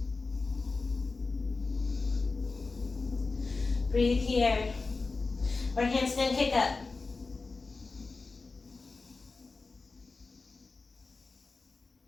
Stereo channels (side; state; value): right; quieter; 3.9 dB